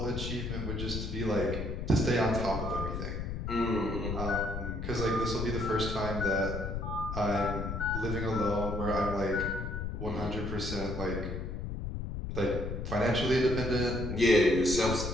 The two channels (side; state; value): left; noise; rumble, 4 dB below the sound